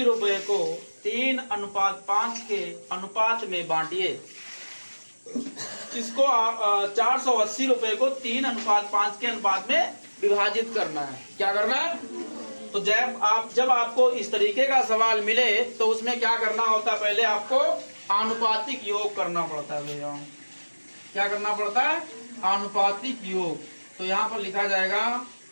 रुपए को 3:5 के अनुपात में बांटिए। इसको 480 रुपए को 3:5 के अनुपात में विभाजित करना है। क्या करना है? तो जब आपको इस तरीके का सवाल मिले तो उसमें क्या करना होता है, पहले आपको आनुपातिक योग करना पड़ता है भैया। क्या करना पड़ता है? आनुपातिक योग। तो यहां पर लिखा जाएगा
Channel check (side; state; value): both; inverted; correlation -1.00